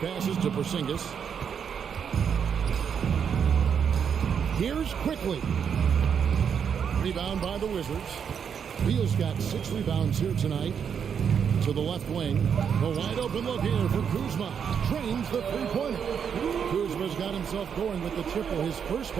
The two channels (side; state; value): left; quieter; 7.4 dB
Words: to Porzingis. Here's quickly. Rebound by the Wizards. Beal's got 6 rebounds here tonight. To the left wing. A wide open look here for Kuzma. Trains the 3-pointer. Kuzma's got himself going with the triple, his first